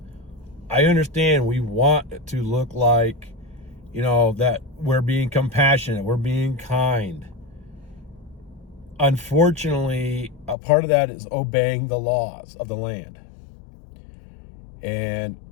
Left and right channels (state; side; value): drops out; right; at 10.6 s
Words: I understand we want to look like, that we're being compassionate, we're being kind. Unfortunately, a part of that is obeying the laws of the land. And,